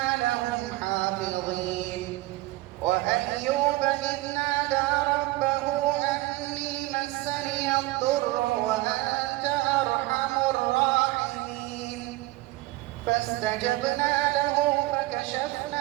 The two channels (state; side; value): quieter; left; 19.1 dB